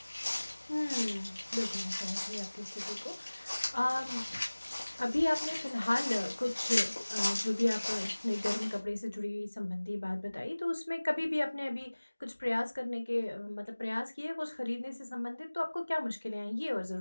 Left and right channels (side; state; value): both; inverted; correlation -1.00